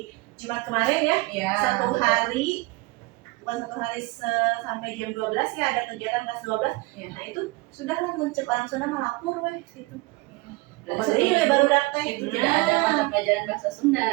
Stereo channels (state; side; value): quieter; left; 23.2 dB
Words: Jumat kemarin ya, satu hari sampai jam 12 ya ada kegiatan kelas 12. Nah itu sudahlah muncul orang Sunda melapor weh gitu. Jadi baru daftar itu tidak ada mata pelajaran bahasa